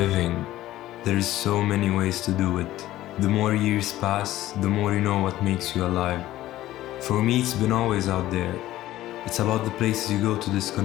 There is so many ways to do it. The more years pass, the more you know what makes you alive. For me, it's been always out there. It's about the places you go to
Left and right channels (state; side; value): quieter; right; 14.9 dB